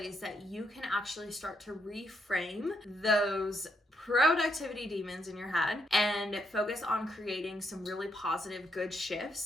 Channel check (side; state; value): both; normal; correlation 0.76